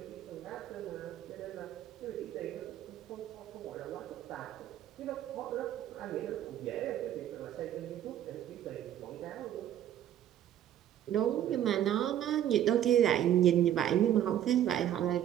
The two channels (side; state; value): left; quieter; 11.3 dB